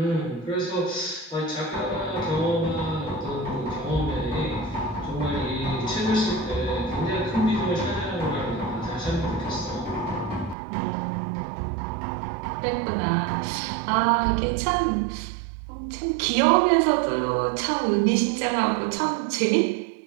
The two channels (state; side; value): drops out; left; at 10.6 s